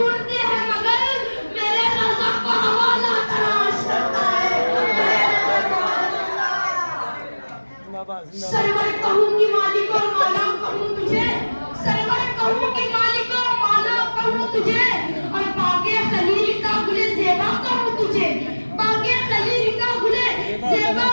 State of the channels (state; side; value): inverted; both; correlation -1.00